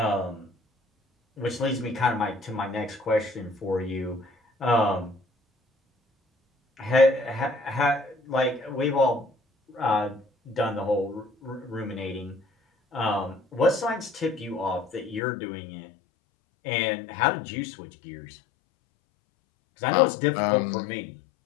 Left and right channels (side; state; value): right; drops out; at 15.2 s